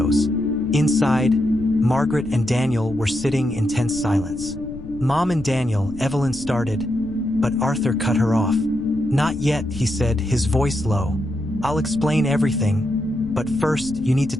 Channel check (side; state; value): left; noise; rumble, 15 dB below the sound